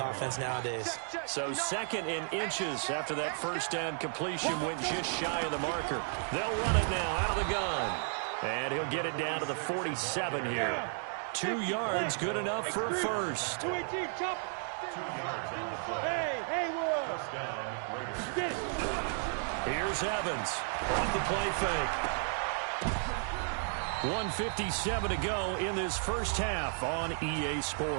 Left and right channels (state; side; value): silent; left; 55 dB below the other